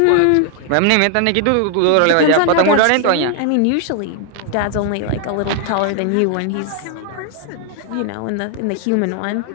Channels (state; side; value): different; both; correlation 0.00